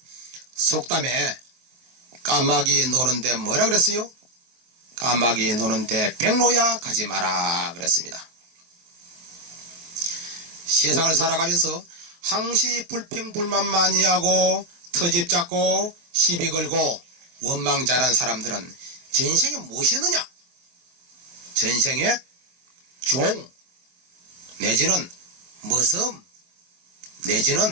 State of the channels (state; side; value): late; left; 23 ms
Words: 속담에 까마귀 노는데 뭐라 그랬어요? 까마귀 노는데 백로야 가지 마라 그랬습니다. 세상을 살아가면서 항시 불평불만 많이 하고 터집 잡고 시비 걸고 원망 잘한 사람들은 전생에 무엇이었느냐? 전생에 종 내지는 머슴